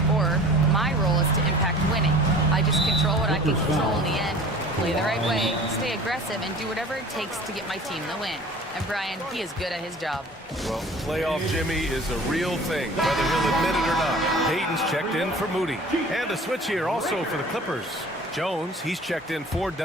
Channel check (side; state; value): both; normal; correlation 0.44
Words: scorer. My role is to impact winning. I just control what I can control in the end, play the right way, stay aggressive, and do whatever it takes to get my team the win. And Brian, he is good at his job. Well, playoff Jimmy is a real thing, whether he'll admit it or not. Payton's checked in for Moody. And a switch here also for the Clippers. Jones, he's checked in for